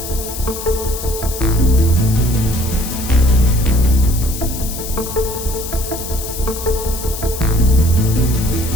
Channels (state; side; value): noise; left; hiss, 9 dB below the sound